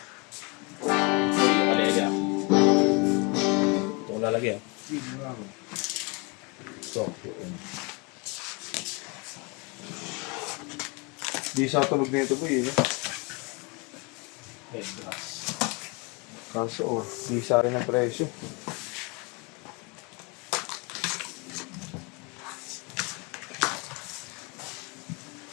Ito ko lalagyan. Di sa tulog nito po yun. Kaso di sa rin ang presyo.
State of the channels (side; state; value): right; quieter; 30.1 dB